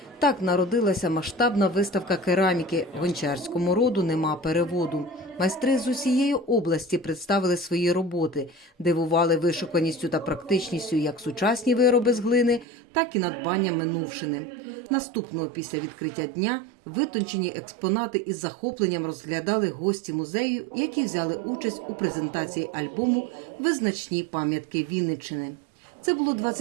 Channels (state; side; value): drops out; left; at 12.7 s